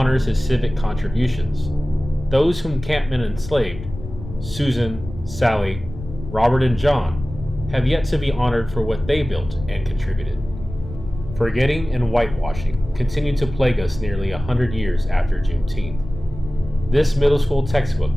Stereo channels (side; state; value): left; noise; rumble, 12 dB below the sound